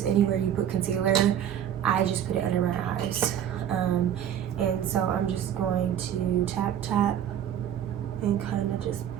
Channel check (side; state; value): left; quieter; 9.9 dB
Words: anywhere you put concealer. I just put it under my eyes. And so I'm just going to tap and kind of just